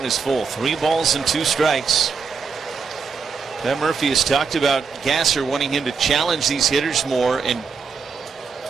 is full. 3 balls and 2 strikes. Pat Murphy has talked about Gasser wanting him to challenge these hitters more and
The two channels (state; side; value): quieter; left; 5.4 dB